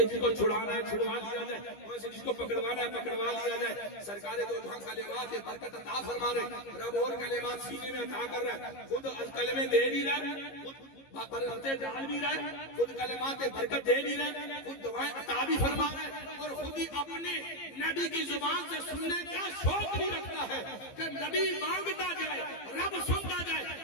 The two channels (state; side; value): late; right; 15 ms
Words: جس کو چھڑانا ہے چھڑوا لیا جائے، وہیں سے جس کو پکڑوانا ہے پکڑوا لیا جائے. سرکار دو جہاں کلمات برکت عطا فرما رہے، رب اور کلمات سینے میں عطا کر رہا ہے، خود الکلمے دے بھی رہا ہے، خود برکتیں ڈال بھی رہے، خود کلمات برکت دے بھی رہے، خود دعائیں عطا بھی فرما رہے، اور خود ہی اپنے نبی کی زبان سے سننے کا شوق بھی رکھتا ہے کہ نبی مانگتا جائے، رب سنتا جائے،